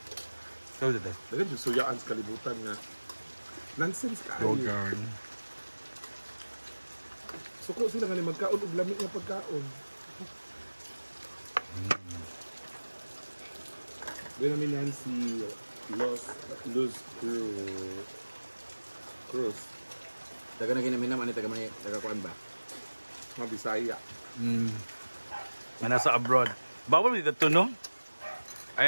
So, dito. Dagan yung suyaan sa kalibutan nga. Nonsense ka. Yogurt. Suko sila nga ni magkaon og lami nga pagkaon. Doon namin Nancy Luz Cruz. Daga na ginaminam, ano taga-kuan ba? Mga Bisaya. Nga nasa abroad. Bawal dito to, no?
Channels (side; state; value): both; inverted; correlation -1.00